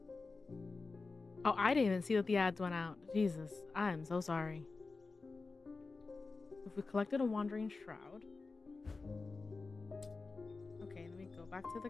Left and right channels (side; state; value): right; quieter; 4.0 dB